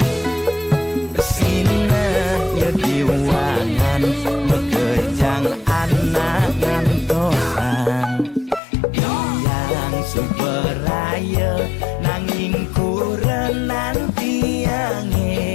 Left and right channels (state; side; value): drops out; right; at 8.6 s